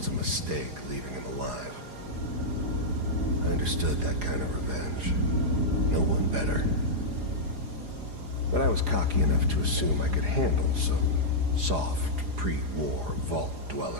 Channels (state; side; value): late; left; 4.9 ms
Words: a mistake leaving him alive. I understood that kind of revenge. No one better. But I was cocky enough to assume I could handle some soft, pre-war vault